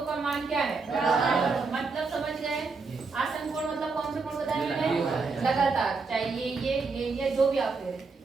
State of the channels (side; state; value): left; quieter; 4.3 dB